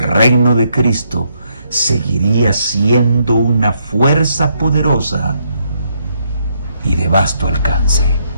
reino de Cristo seguiría siendo una fuerza poderosa y de vasto alcance.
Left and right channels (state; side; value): inverted; both; correlation -0.74